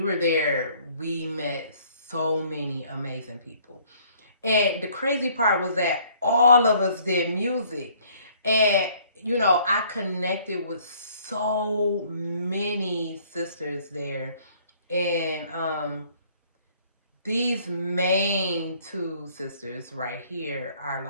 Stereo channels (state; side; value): inverted; both; correlation -0.59